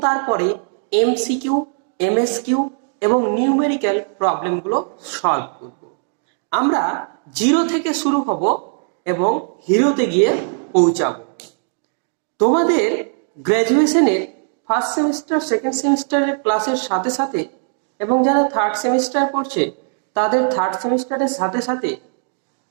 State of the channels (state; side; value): silent; left; 60 dB below the other